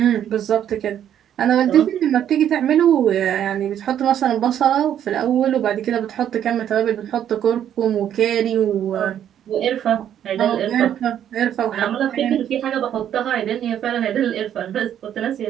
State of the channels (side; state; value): left; quieter; 10.1 dB